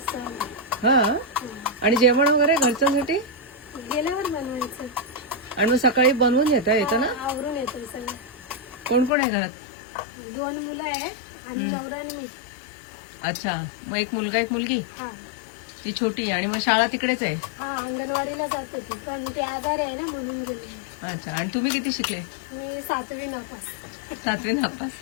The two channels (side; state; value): right; drops out; at 9.1 s